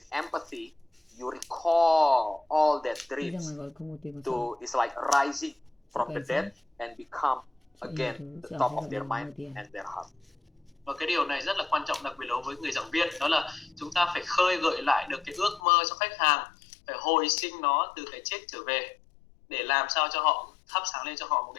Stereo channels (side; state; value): right; drops out; at 15.6 s